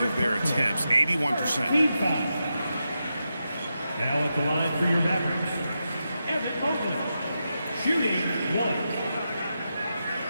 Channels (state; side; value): inverted; both; correlation -0.87